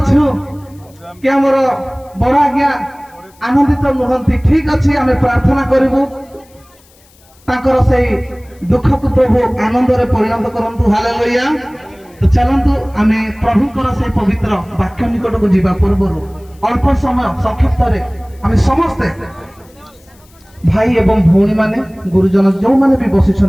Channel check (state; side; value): noise; left; hiss, 30 dB below the sound